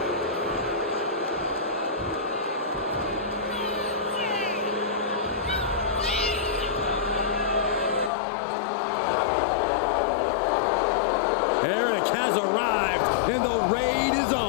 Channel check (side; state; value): right; drops out; at 8.1 s